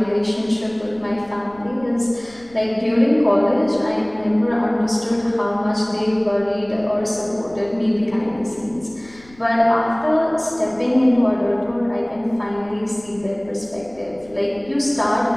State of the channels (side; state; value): left; noise; rumble, 26 dB below the sound